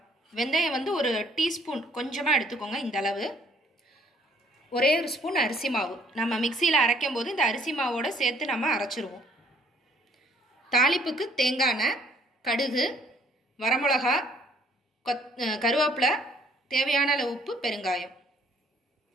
வெந்தயம் வந்து ஒரு டீஸ்பூன் கொஞ்சமாக எடுத்துக்கோங்க. இந்த அளவு. ஒரே ஒரு ஸ்பூன் அரிசி மாவு. நம்ம மிக்சியில் அரைக்கும் போது இந்த அரிசி மாவோட சேர்த்து நம்ம அரைச்சிருவோம். தாளிப்புக்கு தேங்காய் எண்ணெய், கடுகு, வரமிளகா, கருவேப்பிலை, தேவையான அளவு உப்பு, பெருங்காயம்.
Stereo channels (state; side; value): normal; both; correlation 0.62